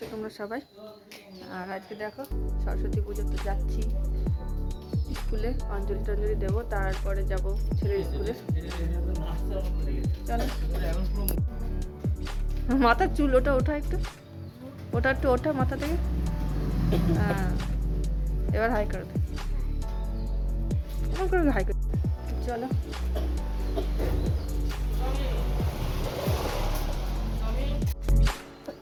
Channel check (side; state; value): both; identical; correlation 1.00